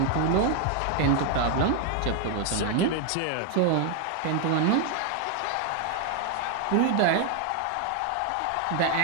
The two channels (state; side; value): different; both; correlation 0.01